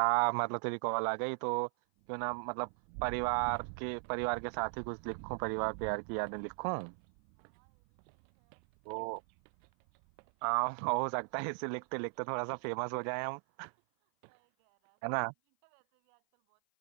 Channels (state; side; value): silent; left; 53 dB below the other